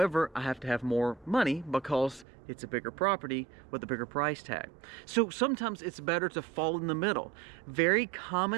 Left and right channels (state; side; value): drops out; left; at 2.2 s